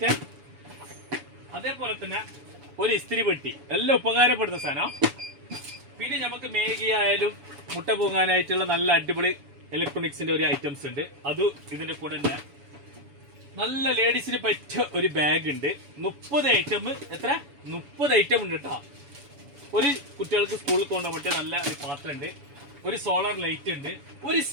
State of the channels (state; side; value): late; left; 7.0 ms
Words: അതേപോലെ തന്നെ ഒരു ഇസ്തിരി പെട്ടി, എല്ലാം ഉപകാരപ്പെടുന്ന സാധനം. പിന്നെ നമുക്ക് മേഗി ആയാലും മുട്ട പൂങ്ങാനായിട്ടുള്ള നല്ല അടിപൊളി ഇലക്ട്രോണിക്സിന്റെ ഒരു ഐറ്റംസ് ഉണ്ട്. അതും ഇതിന്റെ കൂടെ തന്നെ. നല്ല ലേഡീസിന് പറ്റിയ ഒരു ബാഗ് ഉണ്ട്. 30 ഐറ്റം. എത്ര? 30 ഐറ്റം ഉണ്ട് കേട്ടോ. ഒരു കുട്ടികൾക്ക് സ്കൂളിൽ കൊണ്ടുപോകാൻ പറ്റിയ നല്ല ഒരു പാത്രം ഉണ്ട്. ഒരു സോളാർ ലൈറ്റ് ഉണ്ട്. ഒരു